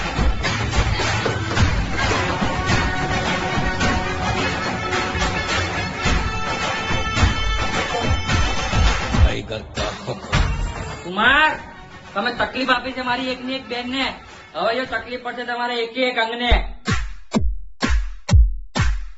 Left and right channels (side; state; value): both; identical; correlation 1.00